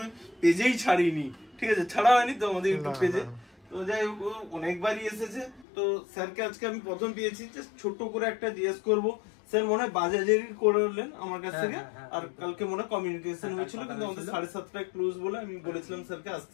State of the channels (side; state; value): right; drops out; at 5.7 s